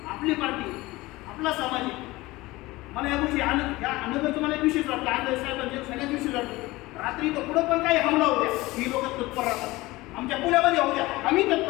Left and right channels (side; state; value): right; quieter; 20.0 dB